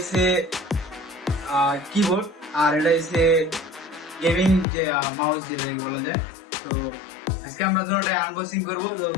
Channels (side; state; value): right; drops out; at 4.7 s